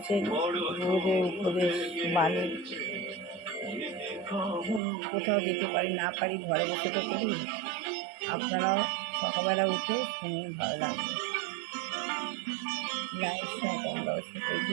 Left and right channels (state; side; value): drops out; left; at 4.8 s